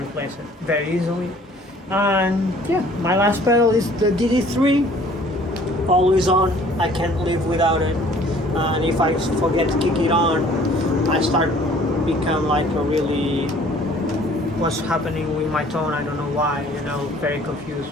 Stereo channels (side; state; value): both; normal; correlation 0.54